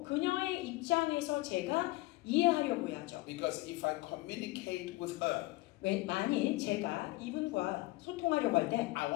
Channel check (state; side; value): quieter; right; 20.6 dB